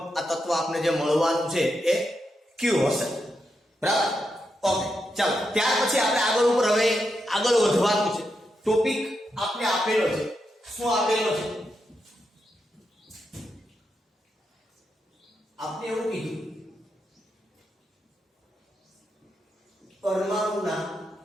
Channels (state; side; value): normal; both; correlation 0.85